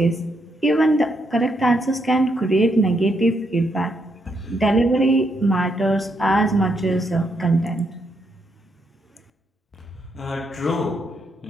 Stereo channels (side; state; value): both; normal; correlation 0.78